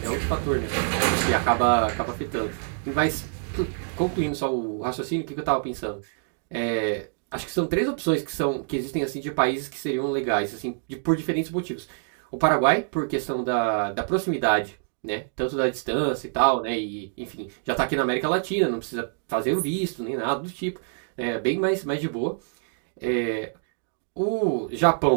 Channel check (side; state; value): left; silent; digital silence